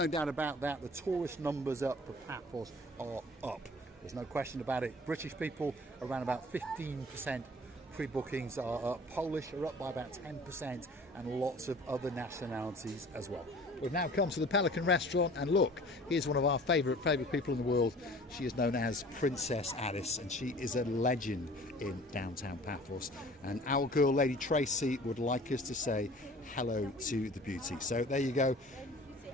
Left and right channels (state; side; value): normal; both; correlation 0.47